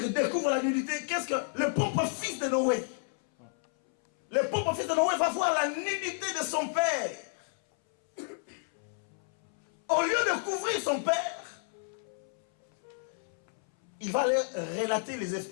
découvre la nudité, qu'est-ce que le propre fils de Noé, le propre fils de Noé va voir la nudité de son père. Au lieu de couvrir son père, il va aller relater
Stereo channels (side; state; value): right; silent; 57 dB below the other